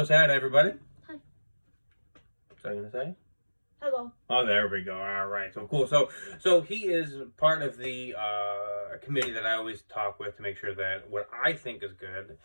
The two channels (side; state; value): both; inverted; correlation -1.00